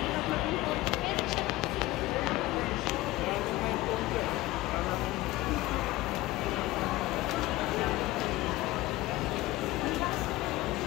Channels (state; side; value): quieter; right; 18.1 dB